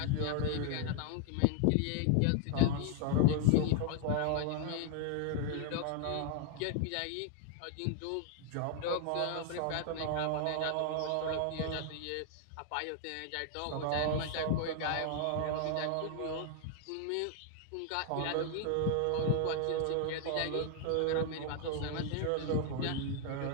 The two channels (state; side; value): different; both; correlation 0.00